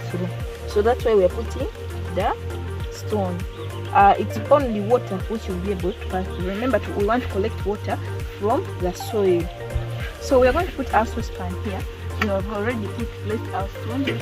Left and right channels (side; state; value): both; identical; correlation 1.00